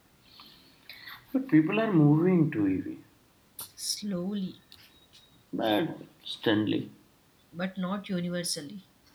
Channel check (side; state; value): both; identical; correlation 1.00